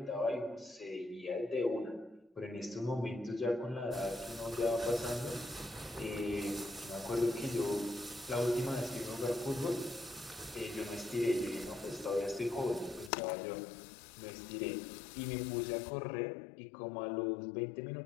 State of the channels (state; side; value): drops out; right; at 13.1 s